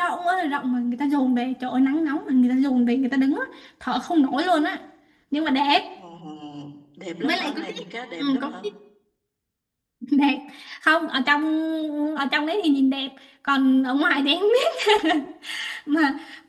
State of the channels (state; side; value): identical; both; correlation 1.00